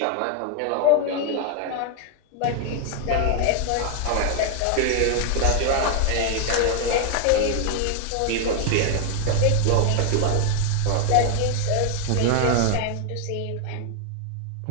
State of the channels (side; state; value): both; different; correlation 0.00